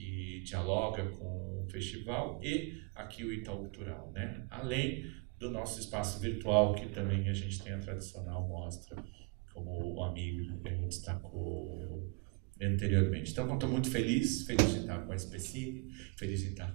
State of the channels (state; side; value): quieter; left; 30.8 dB